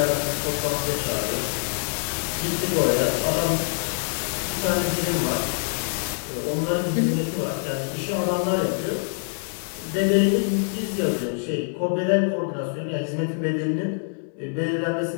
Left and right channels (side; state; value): right; silent; digital silence